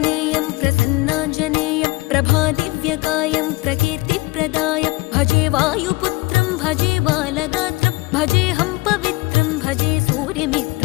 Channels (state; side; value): quieter; right; 22.8 dB